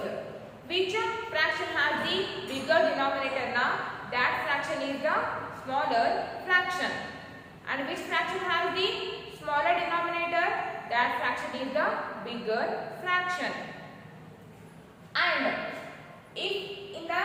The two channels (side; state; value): both; identical; correlation 1.00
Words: Which fraction has the bigger denominator now? That fraction is the smaller fraction. And which fraction has the smaller denominator? That fraction is the bigger fraction. And if in the